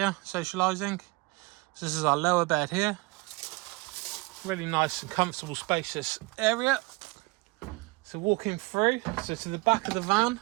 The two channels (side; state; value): left; quieter; 24.8 dB